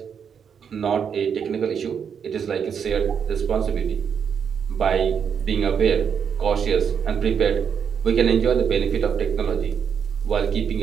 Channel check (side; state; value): left; quieter; 7.3 dB